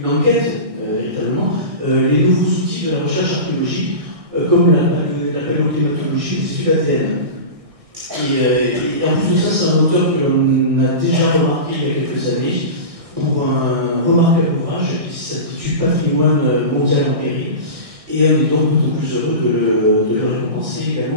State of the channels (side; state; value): left; late; 1.6 ms